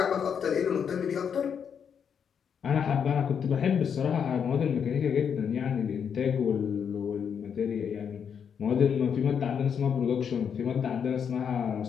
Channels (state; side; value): quieter; right; 7.4 dB